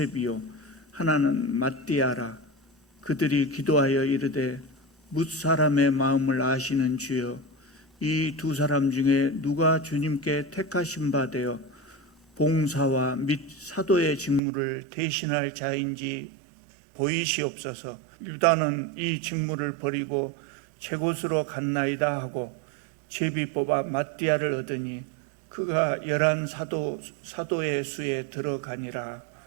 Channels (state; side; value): drops out; left; at 14.4 s